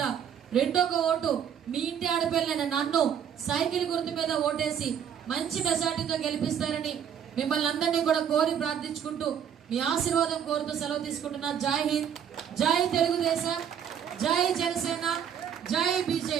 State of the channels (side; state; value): left; quieter; 8.5 dB